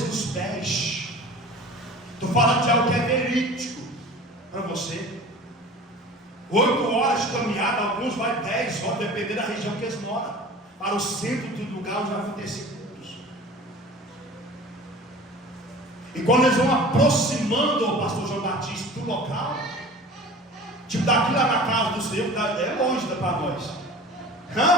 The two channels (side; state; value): both; normal; correlation 0.40